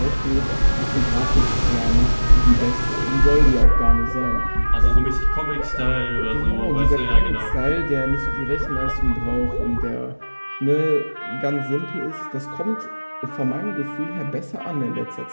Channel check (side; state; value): both; inverted; correlation -1.00